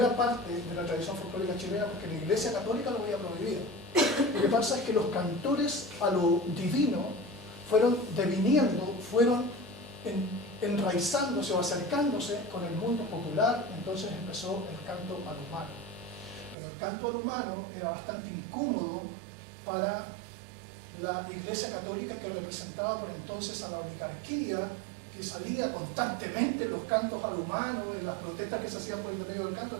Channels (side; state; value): left; drops out; at 16.6 s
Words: parte de la tradición folclórica chilena porque la Iglesia Católica lo había prohibido. Lo que pasa es que los cantores a lo divino fueron deviniendo, fueron enraizándose o acercándose con el mundo popular. Entonces empezó el canto al humano. Pero el canto al humano era bastante incómodo para la Iglesia Católica, que representaba por entonces a la oligarquía, que salía constantemente en los cantos al humano, en las protestas que se hacían por el medio del canto.